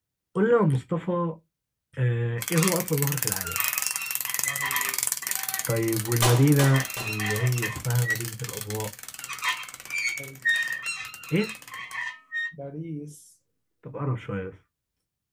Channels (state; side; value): identical; both; correlation 1.00